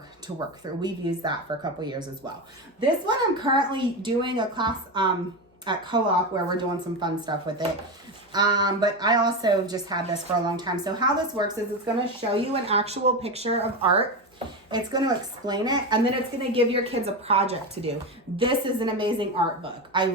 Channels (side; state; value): both; normal; correlation 0.17